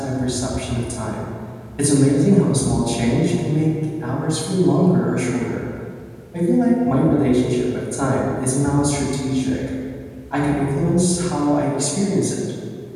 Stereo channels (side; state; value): both; identical; correlation 1.00